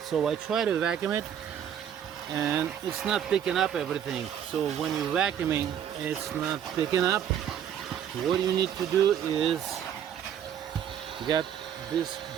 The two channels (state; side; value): quieter; left; 9.3 dB